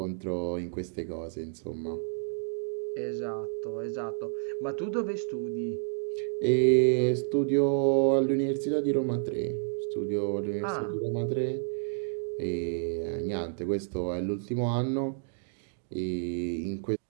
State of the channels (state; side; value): silent; left; digital silence